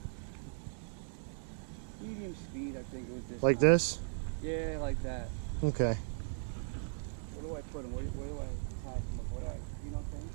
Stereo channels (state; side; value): silent; left; digital silence